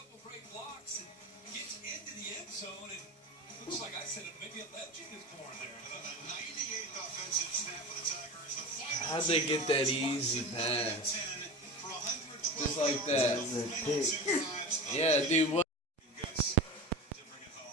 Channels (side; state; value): both; normal; correlation 0.29